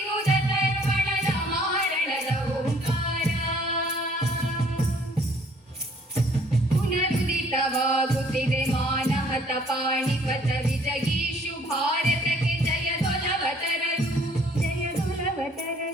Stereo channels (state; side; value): normal; both; correlation 0.59